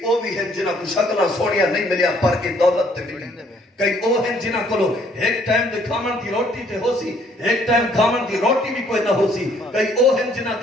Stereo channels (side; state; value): both; normal; correlation 0.64